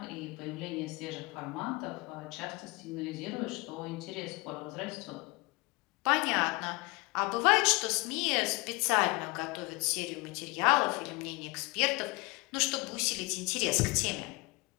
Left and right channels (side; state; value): right; quieter; 24.2 dB